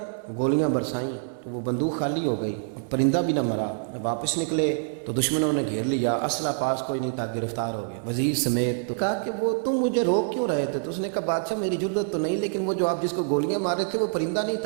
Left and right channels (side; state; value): left; quieter; 39.8 dB